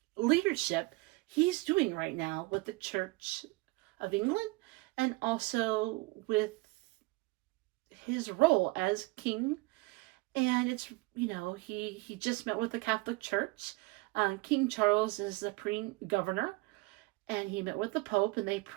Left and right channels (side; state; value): left; quieter; 23.5 dB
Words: leadership he's doing right now with the Church of England and also with his role as king. And it's, he just met with the Catholic Church. King Charles is the governor, and he met with the Pope, and they